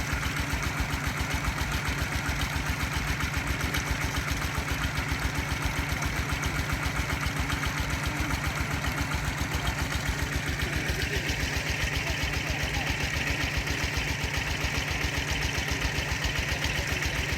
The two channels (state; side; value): identical; both; correlation 1.00